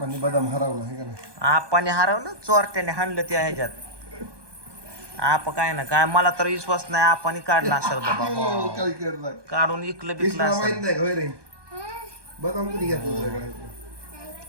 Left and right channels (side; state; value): left; late; 1.2 ms